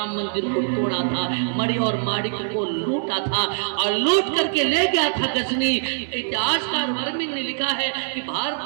मंदिर को तोड़ा था, मणि और माणिक को लूटा था और लूट करके ले गया था गजनी। इतिहासकार वर्णन ने लिखा है कि भारत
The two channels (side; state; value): left; silent; digital silence